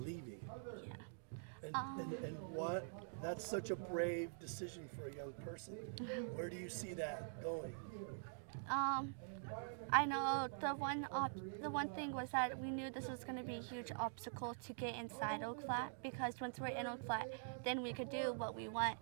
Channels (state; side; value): silent; left; digital silence